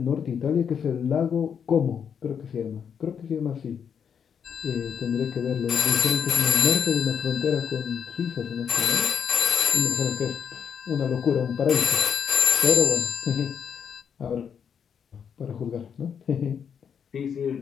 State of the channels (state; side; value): quieter; right; 7.5 dB